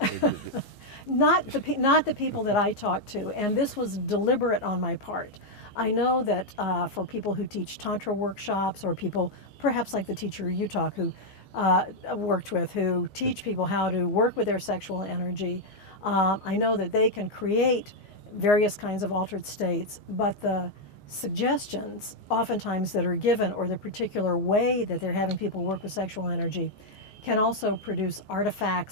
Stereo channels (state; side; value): late; right; 14 ms